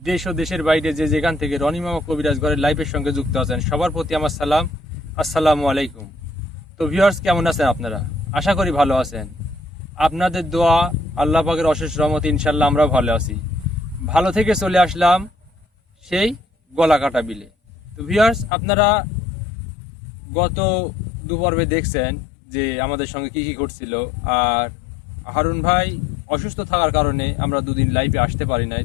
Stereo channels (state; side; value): drops out; right; at 18.5 s